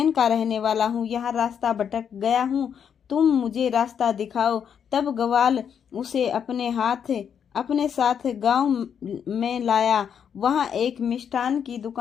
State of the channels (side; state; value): right; quieter; 7.9 dB